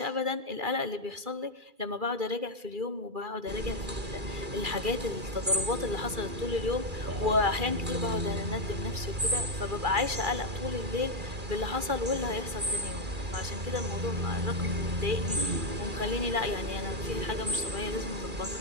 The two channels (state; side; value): late; left; 2.4 ms